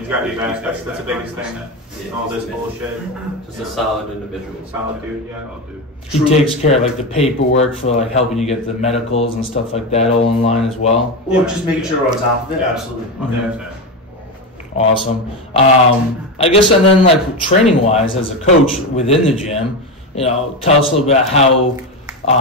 got your back. That's the biggest thing. 100%. All this bullshit. Just a solid individual. Solid dude, yeah. Oh, dude. He takes care of like the paperwork for like helping you get the medicals and stuff like that all in line as well. Well, just making sure we're on top of it. Yeah. Absolutely. 100%. Awesome. I guess, and then like training wise, as a coach within the gym, you know, tell us a little bit about how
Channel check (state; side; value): normal; both; correlation 0.16